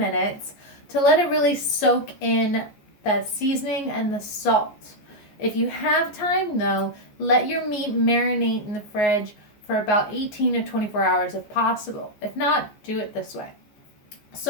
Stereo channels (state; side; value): late; right; 14 ms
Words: to let it really soak in the seasoning and the salt. If you have time though, let your meat marinate in the fridge for about 18 to 24 hours if possible. If not, do it this way.